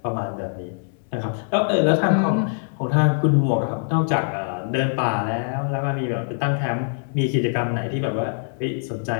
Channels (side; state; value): right; silent; digital silence